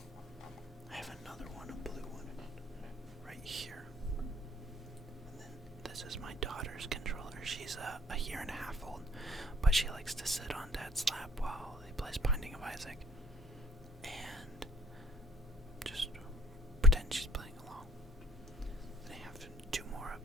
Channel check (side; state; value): both; normal; correlation 0.59